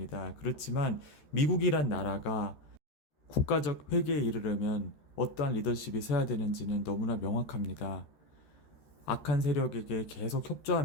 그렇지만 미국이란 나라가 국가적 회개에 이르려면 어떠한 리더십이 서야 되는지는 너무나 명확합니다. 악한 세력에게 계속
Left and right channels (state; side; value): late; right; 13 ms